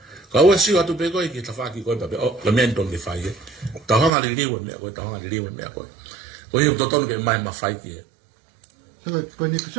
Ka ua sio atu pe koe ki ta whaki koe pape. O, le mento ni whai e. Ta hanga li liwe mea koe. Ta hanga li liwe mea koe. Ko hiu totonu ke mai ma whai ki e.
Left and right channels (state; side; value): drops out; left; at 4.1 s